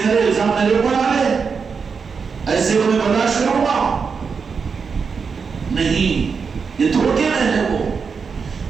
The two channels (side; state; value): left; quieter; 5.6 dB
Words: کرے، الزام میرے اوپر ڈالے، ایسے کو میں برداشت کروں گا نہیں. یہ دھوکے میں ہے وہ.